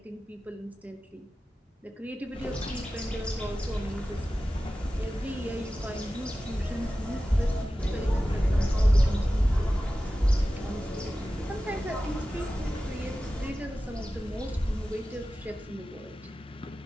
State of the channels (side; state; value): both; normal; correlation 0.95